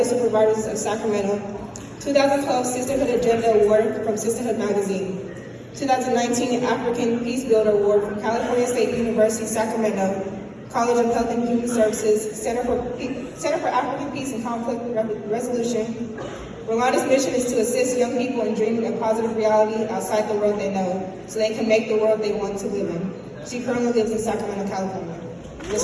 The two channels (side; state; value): both; identical; correlation 1.00